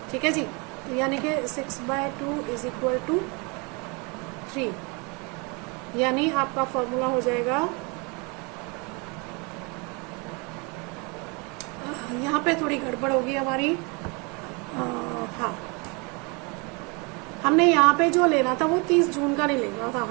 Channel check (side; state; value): left; quieter; 30.3 dB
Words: ठीक है जी, यानी कि 6/2 इज इक्वल टू 3, यानी आपका फॉर्मूला हो जाएगा, यहाँ पे थोड़ी गड़बड़ होगी हमारी, हाँ, हमने यहाँ पे जो लेना था वो 30 जून का नहीं लेना था,